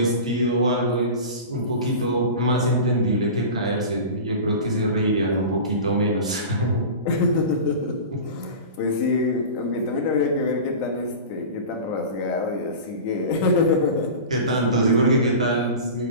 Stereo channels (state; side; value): inverted; both; correlation -0.32